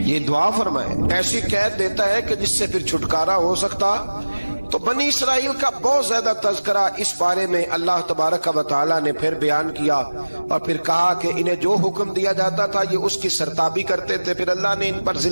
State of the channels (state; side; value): inverted; both; correlation -1.00